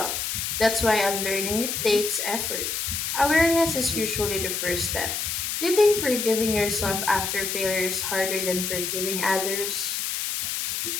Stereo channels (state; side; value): noise; left; hiss, 2 dB below the sound